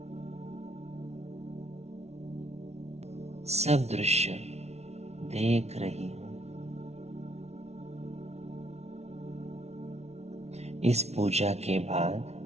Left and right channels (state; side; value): late; left; 0.31 ms